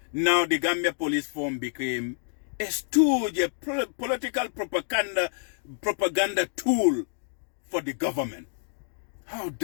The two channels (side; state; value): right; silent; digital silence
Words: now the Gambia Police Force became a stooge, a political propaganda tool for the government. How